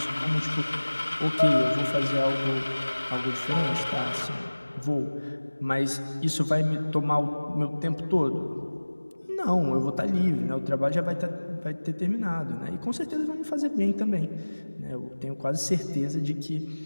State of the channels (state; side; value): inverted; both; correlation -1.00